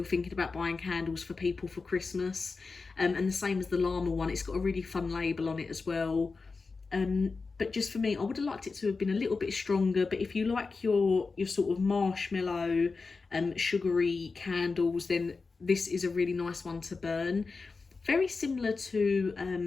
thinking about buying candles for people for Christmas. And the same as the llama one, it's got a really fun label on it as well. But just for me, I would have liked it to have been a little bit stronger. But if you like your sort of marshmallow, sugary candles, then this is a really nice one to burn. Very similar to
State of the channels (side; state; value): right; quieter; 4.3 dB